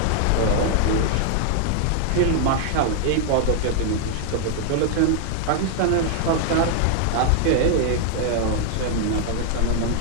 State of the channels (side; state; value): both; different; correlation 0.00